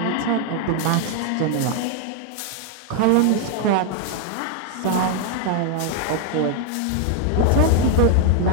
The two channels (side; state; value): both; different; correlation 0.00